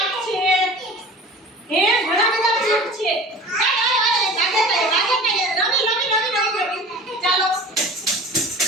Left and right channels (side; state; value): both; normal; correlation 0.40